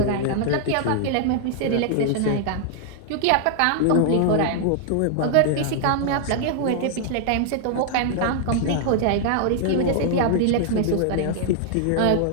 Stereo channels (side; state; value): both; different; correlation -0.01